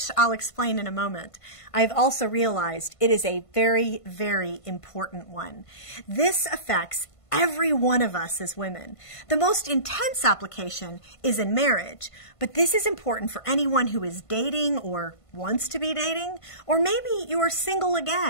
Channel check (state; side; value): late; right; 1.5 ms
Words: I'll explain in a moment, I've also realized it is a very, very important one. This affects every one of us as women. The most intense application is in marriage, but this is important for anyone who is dating or wants to be dating, or maybe you are single